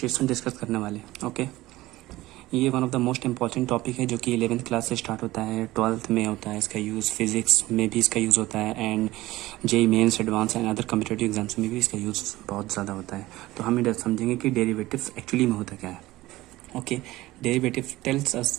डिस्कस करने वाले हैं। ओके, ये one of the most important topic है जो कि 11th क्लास से स्टार्ट होता है, 12th में होता है इसका यूज़, फिजिक्स में भी इसका यूज़ होता है and JEE mains advanced and other competitive exams में भी इसका यूज़ बहुत ज़्यादा होता है। तो हम ये समझेंगे कि डेरिवेटिव एक्चुअली में होता क्या है। Okay, derivative tells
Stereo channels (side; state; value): left; quieter; 17.6 dB